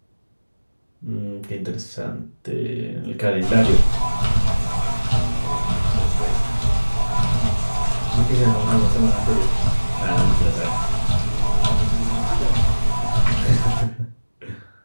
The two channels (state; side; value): inverted; both; correlation -1.00